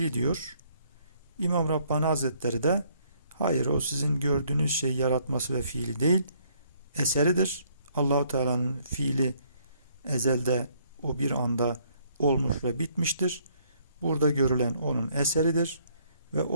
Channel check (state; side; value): inverted; both; correlation -0.66